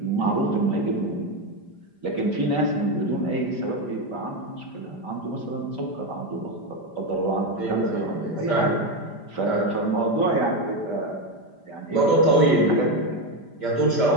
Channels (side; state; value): right; late; 5.0 ms